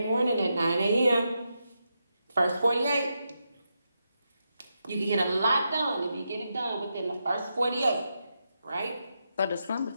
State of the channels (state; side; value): inverted; both; correlation -0.85